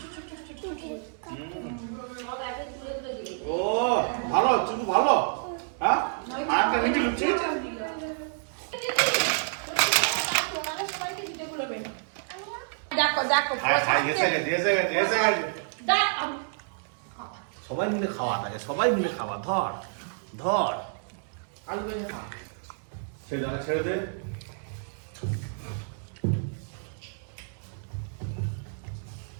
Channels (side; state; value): left; silent; digital silence